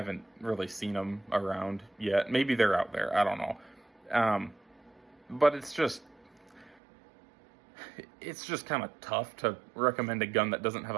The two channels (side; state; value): left; drops out; at 6.8 s